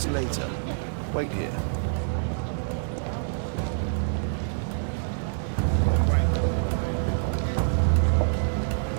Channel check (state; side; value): silent; left; digital silence